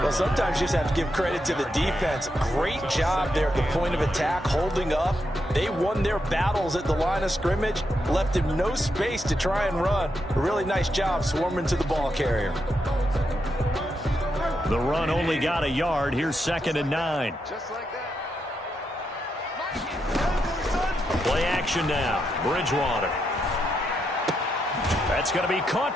sometimes you just have to give credit to the defense. Great job there at the point of attack, holding up. They won their battles at the line of scrimmage, left him no space to try and run. A really nice job swarming to the ball carrier. The run only got a yard. Here's 2nd and 9. Play action now. Bridgewater. That's going to be caught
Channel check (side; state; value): both; normal; correlation 0.82